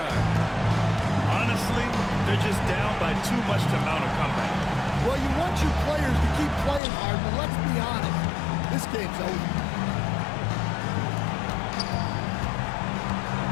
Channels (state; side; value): drops out; right; at 6.8 s